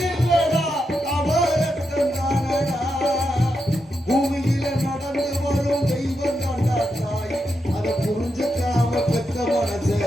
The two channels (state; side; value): normal; both; correlation 0.85